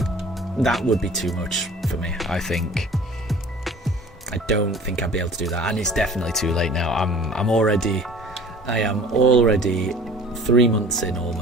too much for me, I think. I don't think I'd be able to do that, and it's definitely too late now. I am already 3 months in,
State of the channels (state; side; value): normal; both; correlation 0.47